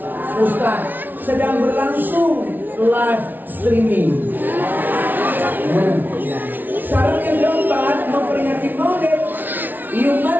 Ustaz. Sedang berlangsung live streaming. Syarat yang keempat memperingati Maulid,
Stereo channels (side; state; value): left; late; 0.086 ms